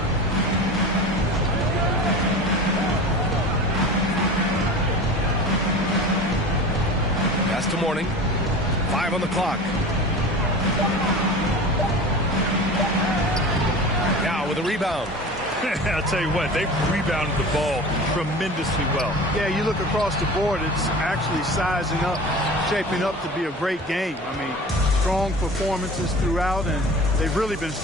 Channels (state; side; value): normal; both; correlation 0.35